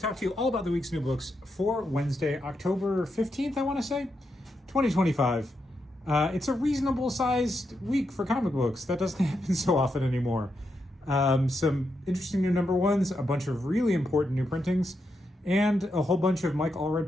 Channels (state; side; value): normal; both; correlation 0.84